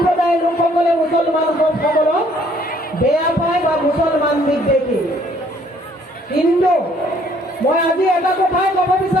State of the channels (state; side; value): normal; both; correlation 0.62